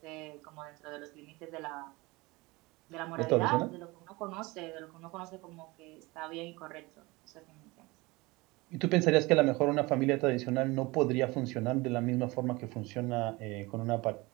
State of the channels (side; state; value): left; quieter; 23.0 dB